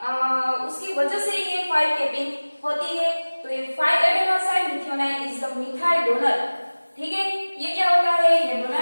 वजह से ये 5 कैपिंग होती है। तो ये 5 adenosine methyl is the methyl donor, ठीक है। ये क्या होता है, ये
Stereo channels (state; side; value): inverted; both; correlation -1.00